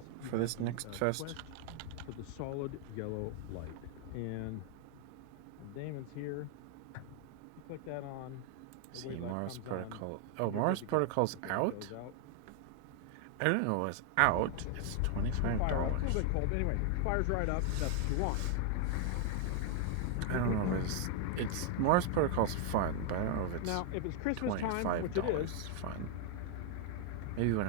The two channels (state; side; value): different; both; correlation 0.00